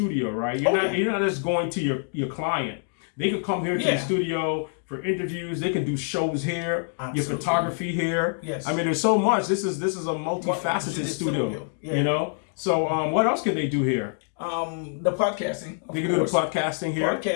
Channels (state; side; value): silent; right; digital silence